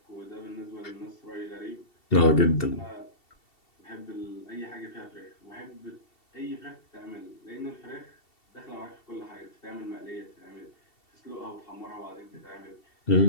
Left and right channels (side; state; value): right; late; 2.7 ms